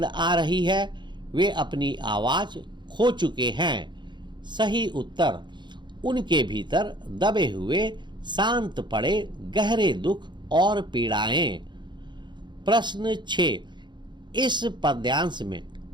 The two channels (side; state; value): left; late; 0.22 ms